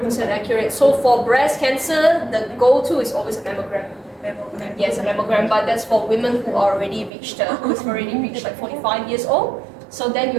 accurate. So for breast cancer, the go-to is always a mammogram. Yes, a mammogram, but that's for women who are already reached, who's already reached like 45 years old. So then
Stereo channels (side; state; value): left; drops out; at 7.1 s